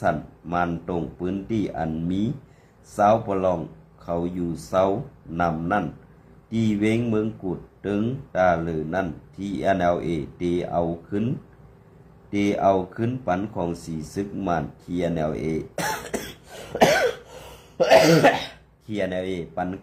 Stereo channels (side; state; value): both; identical; correlation 1.00